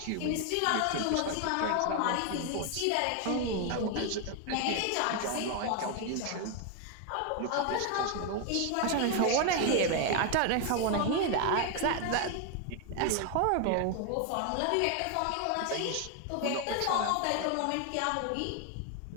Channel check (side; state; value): both; different; correlation 0.01